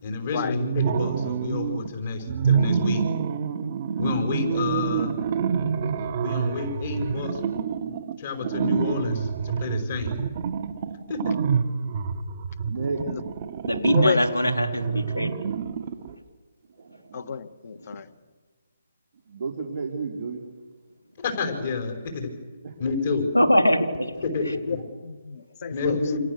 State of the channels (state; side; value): inverted; both; correlation -0.74